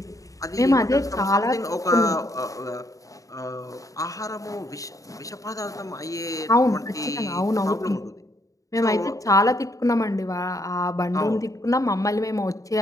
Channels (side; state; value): right; late; 0.16 ms